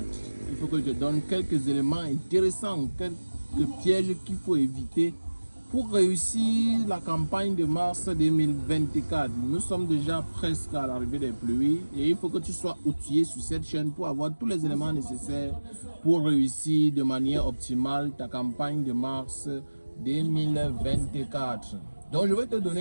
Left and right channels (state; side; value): inverted; both; correlation -1.00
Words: Il faut que je te donne quelques éléments intéressants, quelques pièges qu'il faut éviter pour réussir la campagne de mars 2024. Nous sommes déjà presque à l'arrivée des pluies et il faut que tu sois outillé sur cette chaîne pour avoir tous les éléments nécessaires pour réussir de manière optimale ta campagne de mars 2024. Donc je vais te